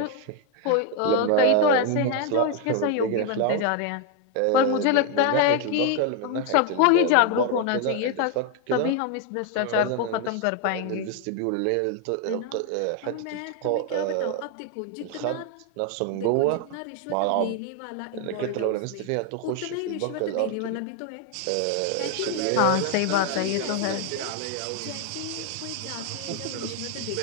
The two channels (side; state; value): both; different; correlation 0.01